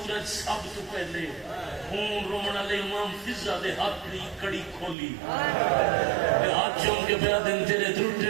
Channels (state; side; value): drops out; left; at 5.0 s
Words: سب تو پہلے خون رومنا لے امام فضا دے ہاتھ دی کڑی کھولی ہاتھ چون کے پیا دن تیرے دھرٹے